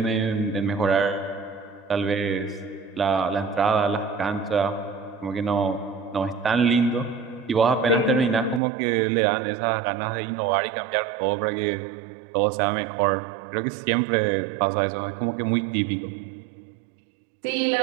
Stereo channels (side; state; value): left; drops out; at 8.6 s